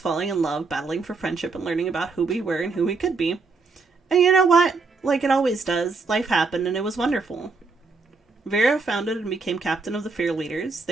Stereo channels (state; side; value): quieter; left; 4.2 dB